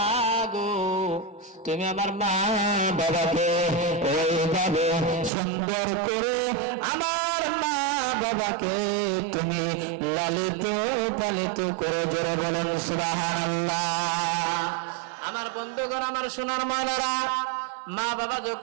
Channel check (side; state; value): left; drops out; at 5.3 s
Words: গো, তুমি আমার মা বাবাকে ওইভাবে সুন্দর করে আমার মা বাবাকে তুমি লালিত পালিত করে জোরে বলেন সুবহানাল্লাহ। আমার বন্ধুগণ, আমার সোনার ময়নারা, মা বাবা